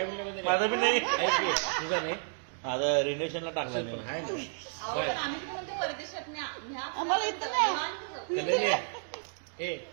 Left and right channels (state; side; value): silent; left; digital silence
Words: म्हणलं म्हणजे माझा बी नाही. तुझा नाही आता रिलेशनला टाकला असेल पण नाही आहे ना. अहो पण आम्ही कुठे म्हणतो परदेशात न्या न्या आम्हाला इथं नाही. निवांत जाऊ. कल्याणी ए